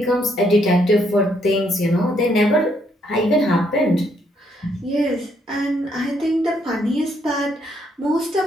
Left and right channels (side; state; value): both; normal; correlation 0.72